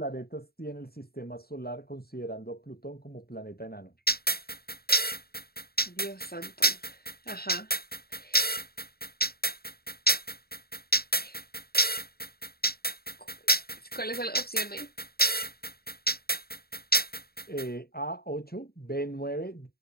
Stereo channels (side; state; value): right; late; 0.45 ms